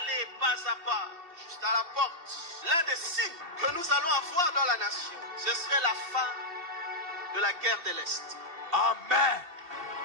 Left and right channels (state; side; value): late; left; 2.8 ms